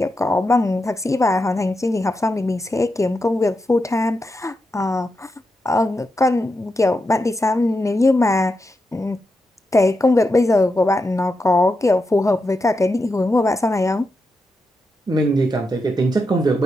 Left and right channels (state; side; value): normal; both; correlation 0.87